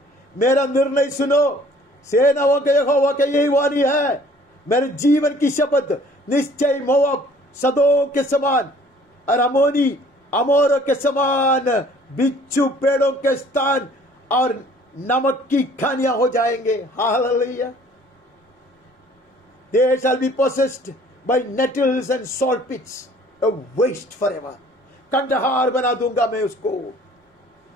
मेरा निर्णय सुनो, सेनाओं के यहोवा के यही वाणी है, मेरे जीवन की शपथ, निश्चय मोआब सदोम के समान और अमोर के समान बिच्छू पेड़ों के स्थान और नमक की खानियां हो जाएंगे। Hallelujah. They shall be possessed by nettles and salt pits, a waste forever. Kandahar बना दूंगा मैं उसको।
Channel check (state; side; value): normal; both; correlation 0.54